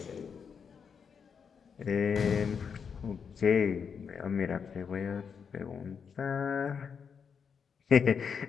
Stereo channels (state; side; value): quieter; right; 6.5 dB